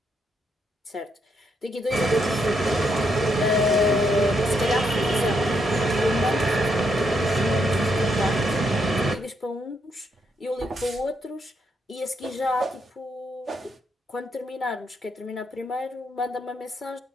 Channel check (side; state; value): both; normal; correlation 0.77